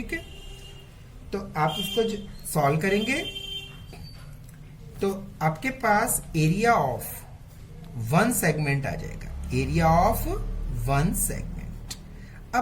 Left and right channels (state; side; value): identical; both; correlation 1.00